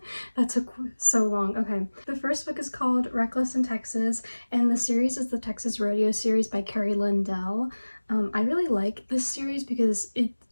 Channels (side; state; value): both; inverted; correlation -1.00